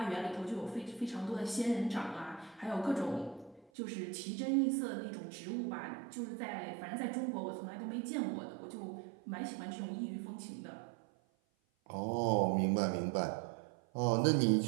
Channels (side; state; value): left; drops out; at 3.7 s